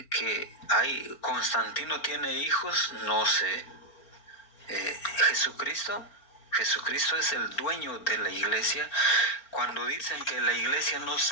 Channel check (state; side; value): late; right; 4.5 ms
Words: que Constantino tiene hijos, no sé. Jesucristo es el dueño de la iglesia. Cuando dicen que la iglesia no